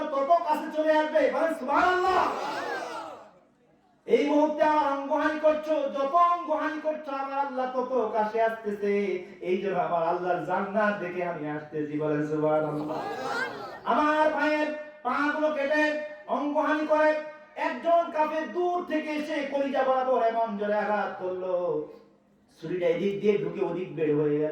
তত কাছে চলে আসবে। বলেন সুবহানাল্লাহ। এই মুহূর্তে আমার অঙ্গহানি করছো, যত অঙ্গহানি করছো আমার আল্লাহ তত কাছে আসতেছে। এই জন্য আমার আল্লাহর জান্নাত দেখে আমি আসতেছি। বলেন সুবহানাল্লাহ। আমার ভাইয়ের পাগুলো কেটে অঙ্গহানি করে একজন কাফের দূর থেকে এসে কলিজা বরাবর এমন জোরে আঘাত করলো, ছুরিটা এদিক দিয়ে ঢুকে ওদিক বের হয়ে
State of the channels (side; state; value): both; identical; correlation 1.00